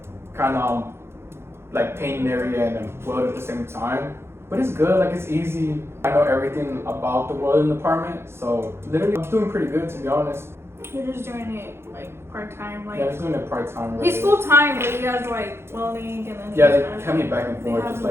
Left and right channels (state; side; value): late; left; 0.12 ms